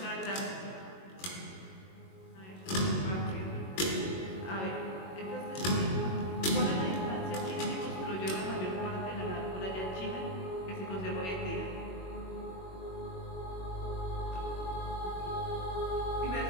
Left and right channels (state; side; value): late; right; 21 ms